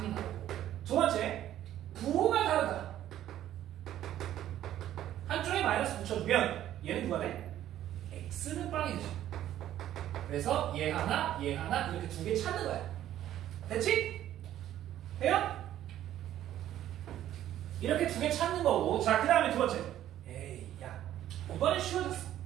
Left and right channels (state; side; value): quieter; left; 12.2 dB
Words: 나오고. 두 번째, 부호가 다르다. 한쪽에 마이너스 붙여주면 얘는 누가 돼? x는 빵이 되죠. 그래서 얘 하나 이렇게 두 개 찾는 거야. 됐지? 돼요? 이렇게 두 개 찾는 거고. 자, 그 다음에 두 번째. 에이, 야, 이번엔 쉬워졌어.